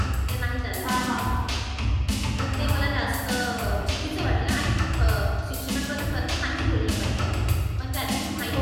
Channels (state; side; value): identical; both; correlation 1.00